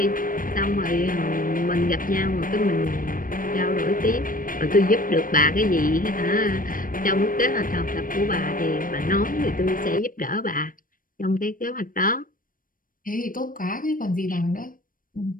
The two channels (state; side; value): late; right; 0.40 ms